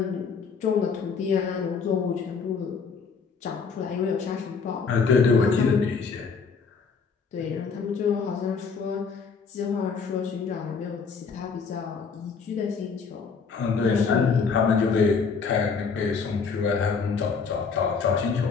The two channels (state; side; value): quieter; right; 5.4 dB